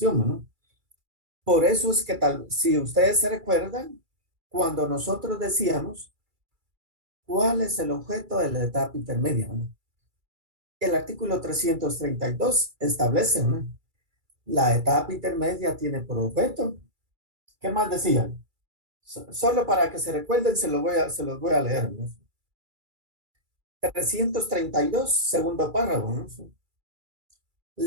¿no? Por eso es que si ustedes se recuerdan, cuando nosotros decíamos cuál es el objeto de la etapa intermedia, ¿no? El artículo 332 establece, ¿no? La etapa intermedia tiene por objeto ¿Qué más decía? Solo para que se recuerden, se los voy a leer, ¿no? 332, segundo párrafo, ¿no?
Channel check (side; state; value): left; late; 2.3 ms